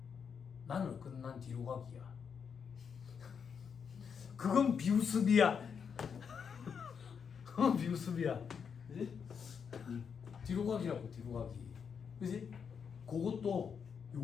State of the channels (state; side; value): quieter; right; 6.7 dB